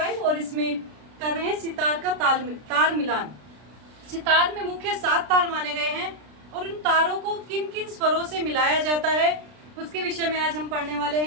और इसमें कर रहे हैं सितार का तार मिलान। सितार में मुख्य 7 तार माने गए हैं और उन तारों को किन किन स्वरों से मिलाया जाता है उसके विषय में आज हम पढ़ने वाले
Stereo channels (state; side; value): late; left; 33 ms